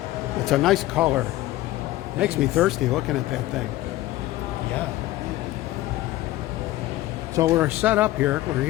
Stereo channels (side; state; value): right; quieter; 16.0 dB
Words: It's a nice color. Makes me thirsty looking at that thing. Yeah. So we're set up here. We're